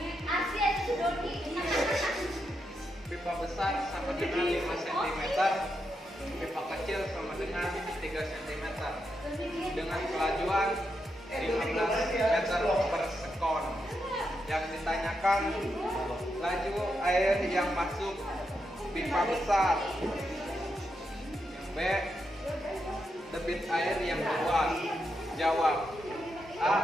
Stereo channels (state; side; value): normal; both; correlation 0.84